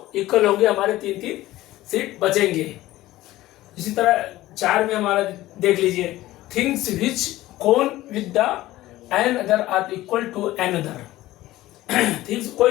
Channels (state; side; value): quieter; right; 16.4 dB